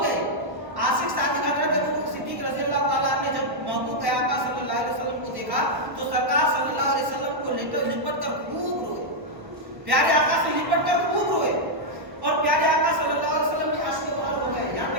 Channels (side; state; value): left; late; 1.1 ms